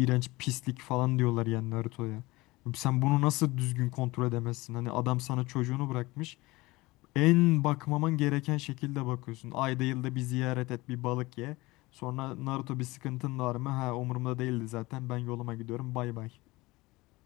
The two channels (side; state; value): right; quieter; 21.2 dB